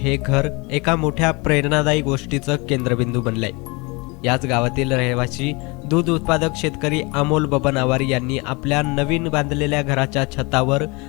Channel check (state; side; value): quieter; right; 27.1 dB